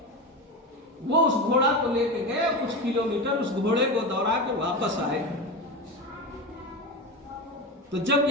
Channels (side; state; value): both; normal; correlation 0.21